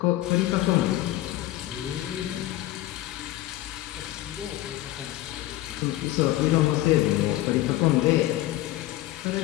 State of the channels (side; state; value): right; quieter; 15.7 dB